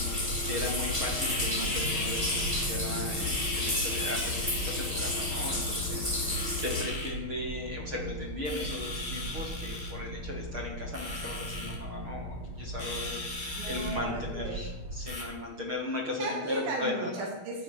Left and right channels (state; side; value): late; left; 6.4 ms